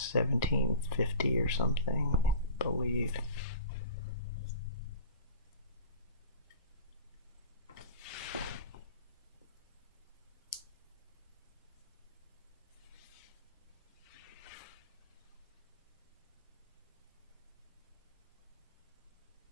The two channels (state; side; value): inverted; both; correlation -0.40